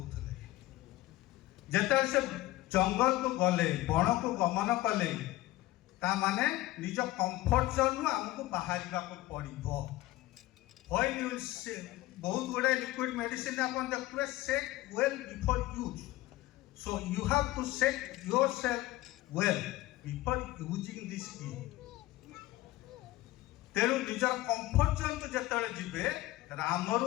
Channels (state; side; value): quieter; right; 17.2 dB